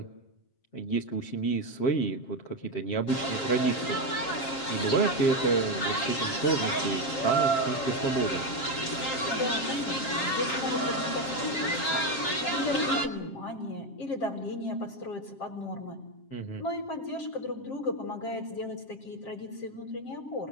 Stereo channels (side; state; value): right; late; 7.5 ms